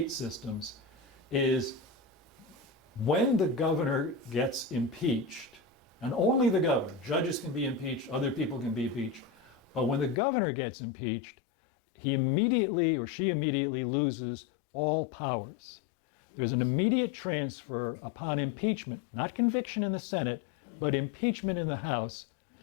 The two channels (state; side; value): drops out; right; at 10.2 s